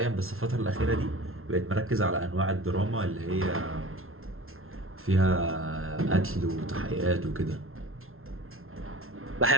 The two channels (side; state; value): left; late; 0.62 ms